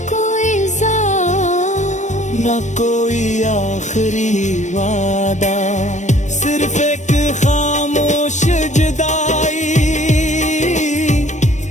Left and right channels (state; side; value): late; right; 0.35 ms